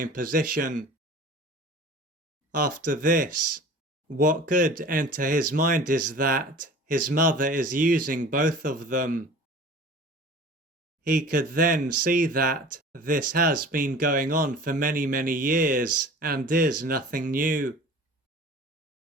position. After this, what could enter his mind is that his mother is using both of them. He could then see that this has been going on for many, many years and is nothing new.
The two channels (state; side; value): normal; both; correlation 0.42